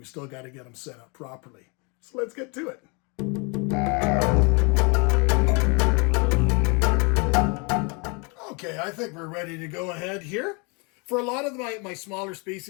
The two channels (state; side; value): quieter; right; 31.9 dB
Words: still got to get them set up properly. So let's get to it. Okay, I think we're ready to go ahead here. For a lot of my smaller